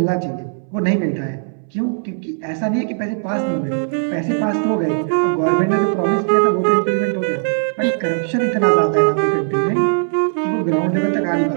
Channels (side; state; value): left; silent; 65 dB below the other